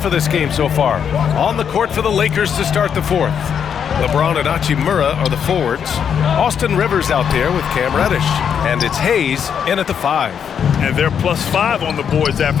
for this game so far. On the court for the Lakers to start the fourth. LeBron and Hachimura are the forwards. Austin Rivers out there with Cam Reddish. And it's Hayes in at the 5. And they're +5 on the boards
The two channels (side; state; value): right; quieter; 7.8 dB